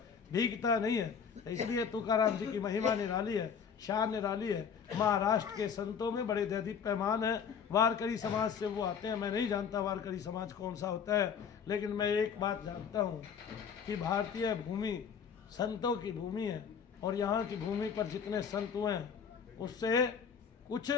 भीगता नहीं है। इसलिए तुकाराम जी की महिमा निराली है, शान निराली है। महाराष्ट्र के संतों में बड़े दैदिक पैमान है। वारकरी समाज से वो आते हैं। मैं नहीं जानता वारकरी समाज कौन सा होता है, लेकिन मैं एक बात जानता हूँ कि भारतीय भूमि संतों की भूमि है, और यहाँ की भूमि पर जितने संत हुए हैं उससे कुछ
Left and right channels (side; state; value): right; quieter; 6.9 dB